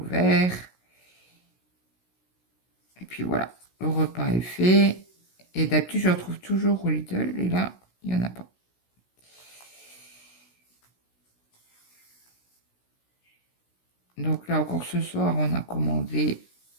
verts. Et puis voilà, le repas est fait. Et d'habitude, je retrouve toujours au Lidl. Et là, il n'y en a pas. Donc là, encore ce soir, on a commandé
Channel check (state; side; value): late; right; 16 ms